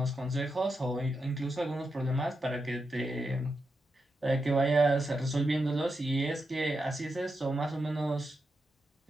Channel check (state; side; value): normal; both; correlation 0.86